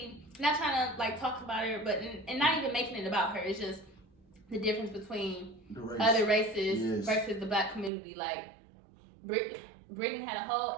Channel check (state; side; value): drops out; left; at 7.9 s